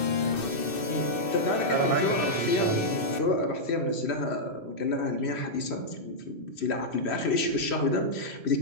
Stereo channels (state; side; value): late; right; 2.6 ms